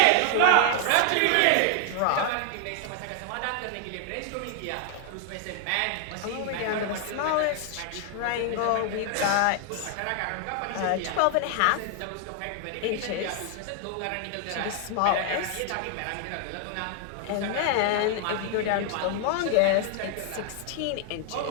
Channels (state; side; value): different; both; correlation 0.00